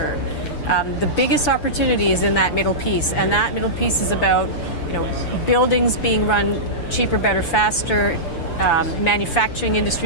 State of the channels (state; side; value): late; right; 6.8 ms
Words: The biggest opportunity is in that middle piece, and that middle piece is about buildings being run cheaper, better, faster, manufacturing